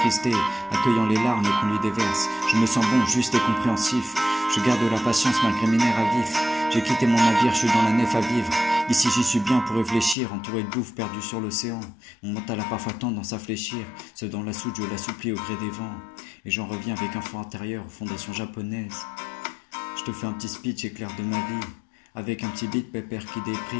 accueillant les larmes qu'on lui déverse. Je me sens bon, juste et compréhensif, je garde la patience malgré mes nerfs à vif. J'ai quitté mon navire, je suis dans la nef à vivre. Ici j'y suis bien pour réfléchir, entouré de bouffe perdu sur l'océan. Mon mental a parfois tendance à fléchir, seul dans la soute je l'assouplis au gré des vents. Et j'en reviens avec un fond intérieur aux fondations japonaises. Je te fais un petit speech éclair de ma vie, avec un petit beat pépère qui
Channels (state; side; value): drops out; right; at 10.2 s